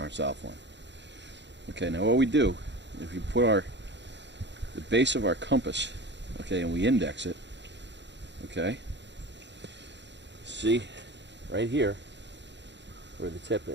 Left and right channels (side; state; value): left; late; 0.52 ms